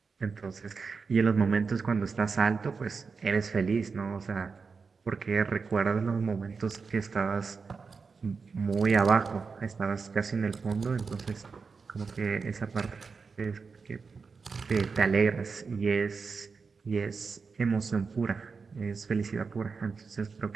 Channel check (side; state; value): left; quieter; 5.0 dB